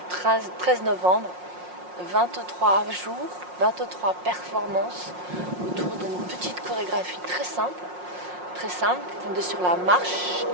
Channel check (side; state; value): left; late; 5.6 ms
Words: 13 novembre, 23 jours, 23 performances autour d'une petite chorégraphie très simple, fondée sur la marche